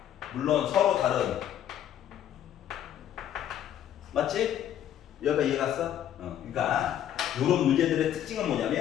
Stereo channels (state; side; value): quieter; right; 10.7 dB